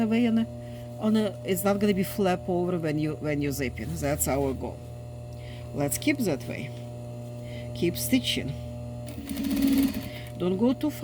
lay it's not gonna be flap over when you zip it. That's our goal. Let's keep that way. Keep stitching. Don't go too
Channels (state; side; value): identical; both; correlation 1.00